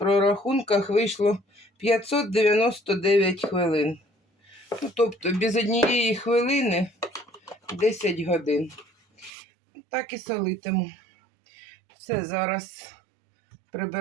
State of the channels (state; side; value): drops out; left; at 9.3 s